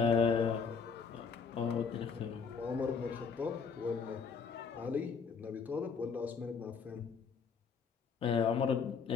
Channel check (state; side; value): quieter; right; 5.8 dB